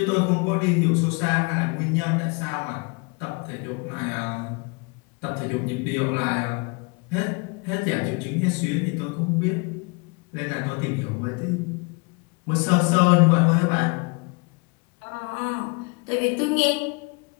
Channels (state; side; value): quieter; right; 30.8 dB